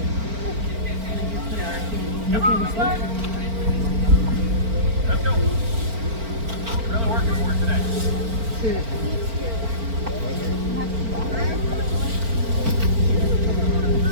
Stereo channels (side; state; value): left; late; 4.4 ms